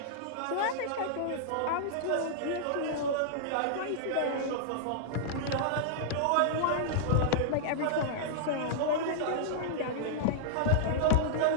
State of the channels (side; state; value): both; different; correlation -0.01